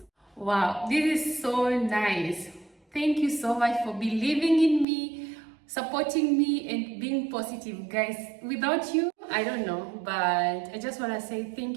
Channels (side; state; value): left; drops out; at 4.9 s